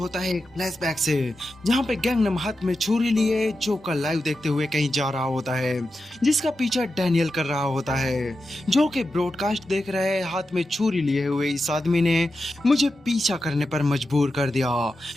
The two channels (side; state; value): both; normal; correlation 0.90